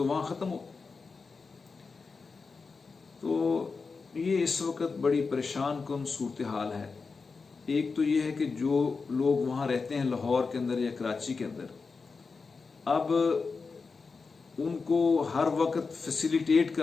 وہاں ختم ہو۔ تو یہ اس وقت بڑی پریشان کن صورتحال ہے۔ ایک تو یہ ہے کہ جو لوگ وہاں رہتے ہیں لاہور کے اندر یا کراچی کے اندر، اب ان کو ہر وقت فیسیلیٹیٹ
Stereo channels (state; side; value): quieter; right; 4.6 dB